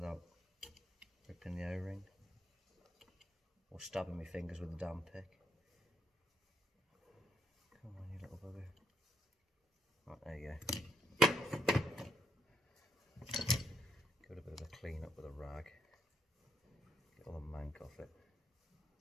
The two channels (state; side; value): normal; both; correlation 0.76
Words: ripping the O-ring or stabbing my fingers with the damn pick. Come on, you little bugger. Right, there you go. Give it a bit of a clean up with a rag. Get all the mank off it.